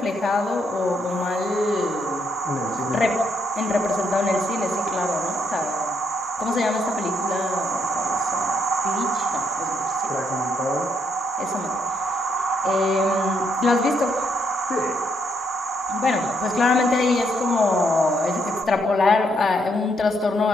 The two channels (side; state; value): both; normal; correlation 0.75